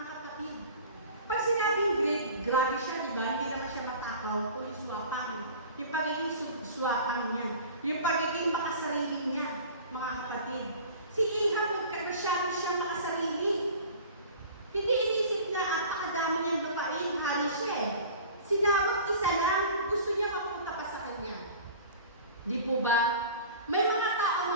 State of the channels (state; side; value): inverted; both; correlation -0.41